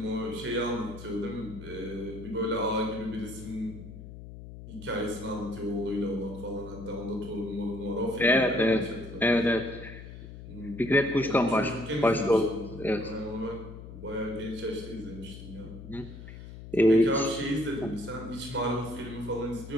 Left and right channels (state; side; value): noise; left; hum, 13 dB below the sound